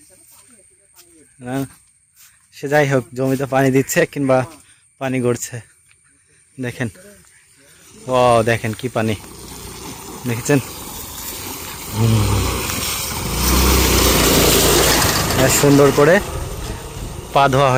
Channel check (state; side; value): identical; both; correlation 1.00